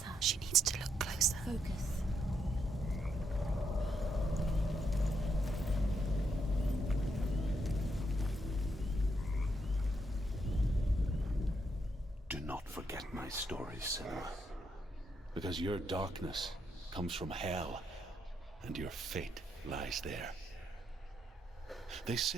She needs to look closer. Focus. Do not forget my story, Senua. Because your darkness comes from hell, and your fate lies there. They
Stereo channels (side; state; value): both; normal; correlation 0.78